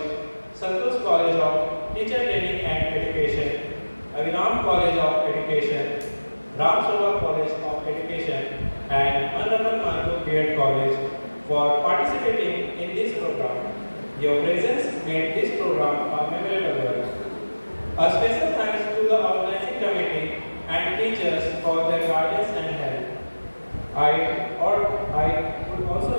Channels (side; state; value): both; inverted; correlation -1.00